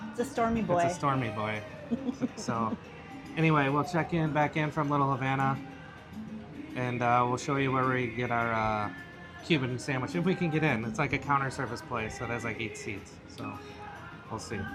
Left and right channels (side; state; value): both; identical; correlation 1.00